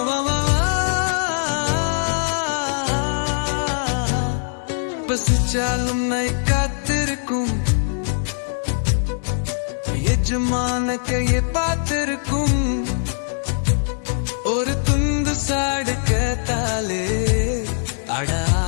பசிச்சாலும் நை காத்திருக்கும் எஜமான கையை பார்த்திருக்கும் ஒரு துண்டு சாடு கேட்டாலே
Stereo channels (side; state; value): right; silent; digital silence